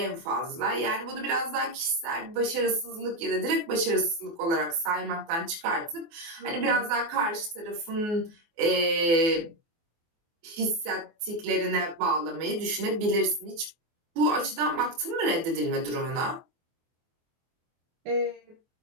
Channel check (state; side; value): late; left; 24 ms